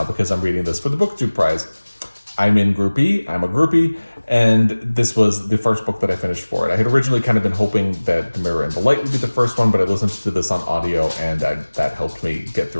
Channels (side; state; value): both; inverted; correlation -1.00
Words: because I'm reading this for the BookTube Prize. I'm in Group E, I'm a groupie, and this was the first book that I finished for it. I had originally kind of been hoping that The Mirror and the Light would be the first one, but I listened to this on audio, and that helped me get